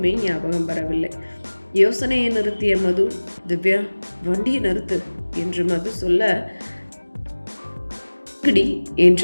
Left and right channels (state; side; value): inverted; both; correlation -1.00